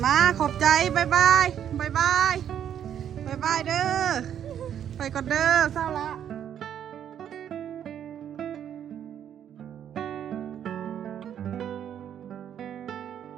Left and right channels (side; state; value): left; quieter; 9.6 dB